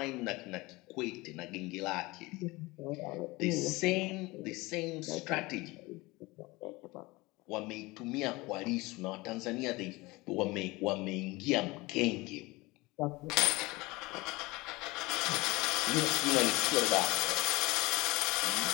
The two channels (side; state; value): right; quieter; 22.3 dB